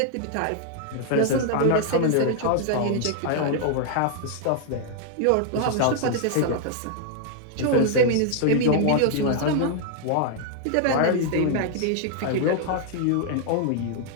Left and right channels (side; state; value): both; different; correlation 0.00